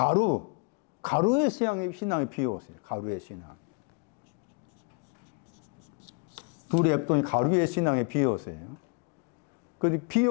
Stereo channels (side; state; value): right; quieter; 34.8 dB